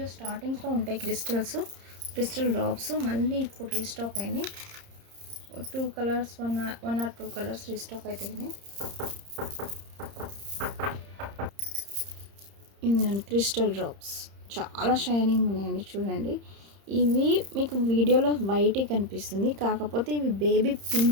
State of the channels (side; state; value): left; late; 30 ms